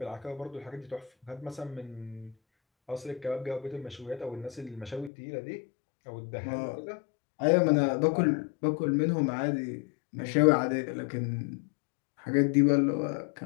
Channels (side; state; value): right; drops out; at 5.1 s